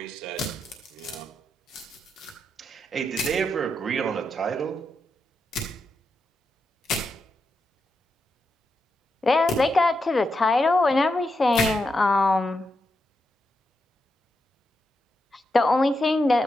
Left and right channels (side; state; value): both; normal; correlation 0.85